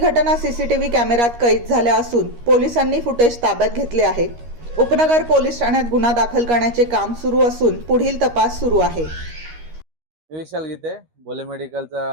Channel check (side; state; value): left; late; 13 ms